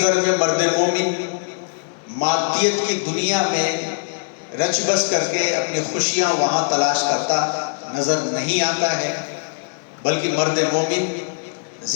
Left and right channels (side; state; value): right; silent; digital silence